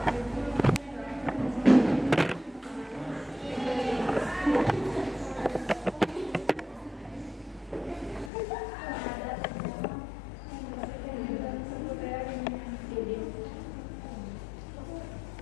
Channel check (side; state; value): right; drops out; at 8.3 s